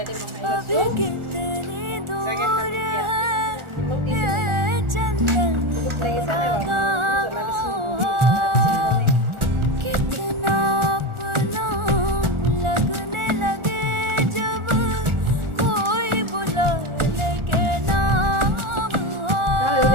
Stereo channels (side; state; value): left; late; 1.4 ms